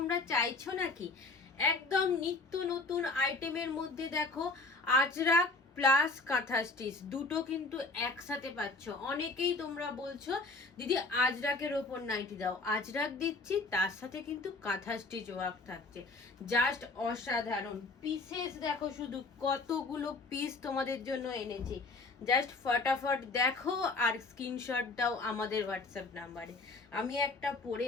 চাইছো নাকি? একদম নিত্য নতুন আইটেমের মধ্যে দেখো আজরাক প্লাস কাঁথা স্টিচ দুটো কিন্তু একসাথে পাচ্ছ। অনেকেই তোমরা বলছো দিদি আজরাকের ওপর নাইটি দাও, আজরাক দিচ্ছি তার সাথে কিন্তু কাঁথা স্টিচ ওয়ার্ক থাকছে। জাস্ট অসাধারণ পিসেস দেখো, শুধু কতগুলো পিস তোমাদের জন্য এনেছি। জাস্ট ফটাফট দেখো আর স্ক্রিনশট দাও আমাদের হোয়াটসঅ্যাপ নাম্বারে। আমি একটা পরে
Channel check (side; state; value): right; quieter; 3.5 dB